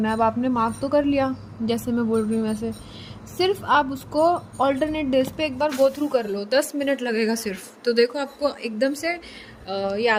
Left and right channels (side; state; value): both; identical; correlation 1.00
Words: है। अब आपने मार्क तो कर लिया, जैसे मैं बोल रही हूँ वैसे, सिर्फ आप उसको ऑल्टरनेट डेज पे एक बार गो थ्रू कर लो, 10 मिनट लगेगा सिर्फ, तो देखो आपको एकदम से